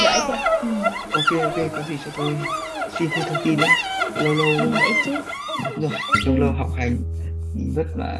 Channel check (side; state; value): both; identical; correlation 1.00